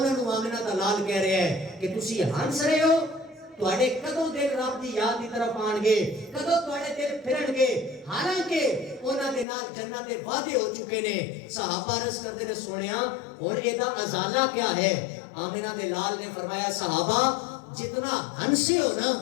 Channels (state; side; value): drops out; right; at 9.5 s